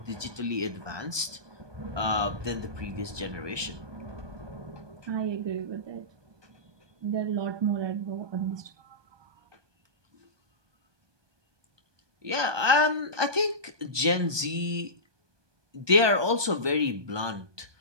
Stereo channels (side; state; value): left; late; 1.2 ms